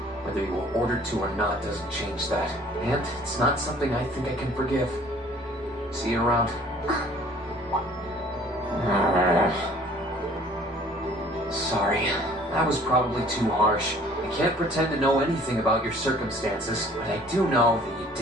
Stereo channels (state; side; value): normal; both; correlation 0.54